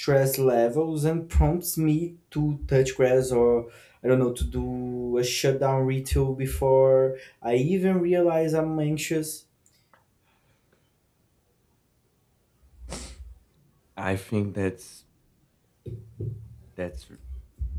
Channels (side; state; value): both; identical; correlation 1.00